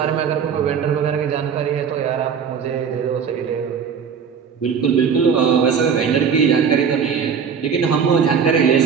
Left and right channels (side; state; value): left; quieter; 6.7 dB